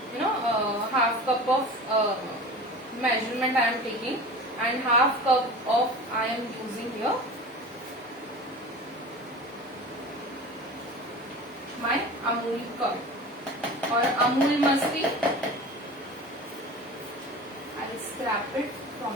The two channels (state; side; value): normal; both; correlation 0.35